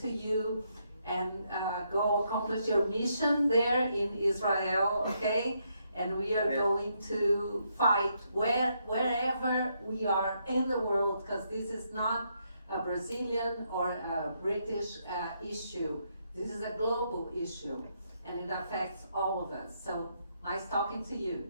you. And go accomplish your mission there in Israel, okay? And we are going to fight wherever we are in the world, because this is not a Brazilian or a British issue. This is a global issue, and it affects all of us. So nice talking to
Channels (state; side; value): inverted; both; correlation -0.77